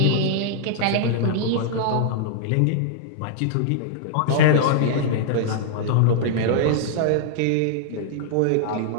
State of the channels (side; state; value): both; different; correlation -0.01